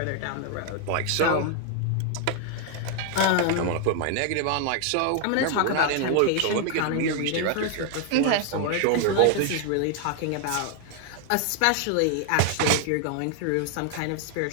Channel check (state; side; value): different; both; correlation 0.00